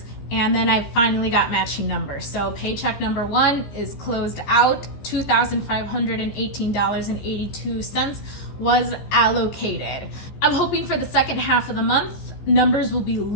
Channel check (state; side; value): late; right; 14 ms